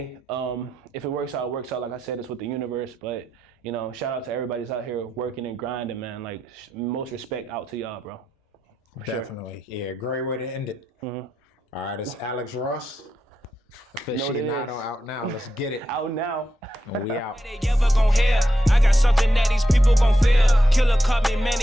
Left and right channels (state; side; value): normal; both; correlation 0.86